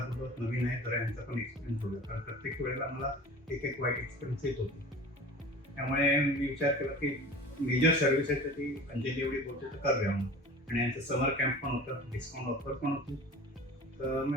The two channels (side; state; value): both; normal; correlation 0.39